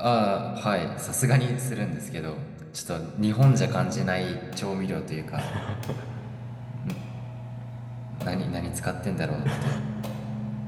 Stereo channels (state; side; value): identical; both; correlation 1.00